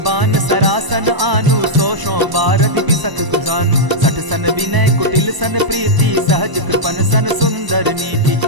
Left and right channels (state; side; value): late; left; 1.0 ms